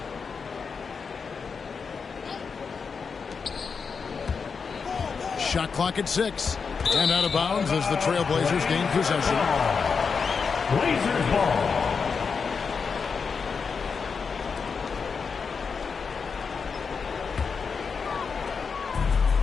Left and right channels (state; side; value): quieter; right; 5.5 dB